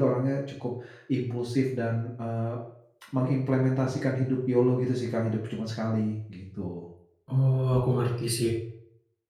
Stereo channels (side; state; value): both; identical; correlation 1.00